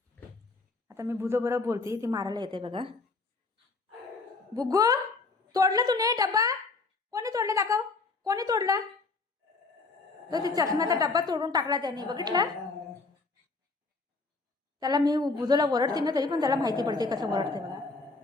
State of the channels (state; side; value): quieter; right; 3.8 dB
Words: आता मी बुजो बरोबर बोलते, ती मारायला येते बघा. बुग्गू, तोडलं तूने डब्बा? कोणी तोडलं दाखव, कोणी तोडला? तो ती चष्म्याचा डब्बा तोडून टाकला त्याने, बघितला? त्याला मी बुजोला ओरडते ना, तरी पण त्याला माहिती पडते कसं ओरडते बघा.